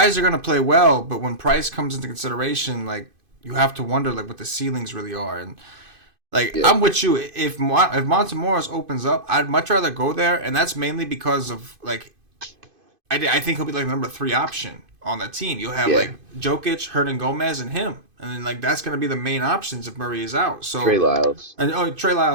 are gonna play well, but when price comes into consideration, like you have to wonder like what the ceilings really are. And like Yeah. I'm with you. If Montemoris opens up, I'd much rather go there, and that's mainly because of like I think he'll be like the number 3 option on the team. You'll have like Jokic, Hernan Gomez, and him, and then like that's gonna be the main options if Murray is out. So Trey Lyles. and Trey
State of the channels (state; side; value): late; left; 2.5 ms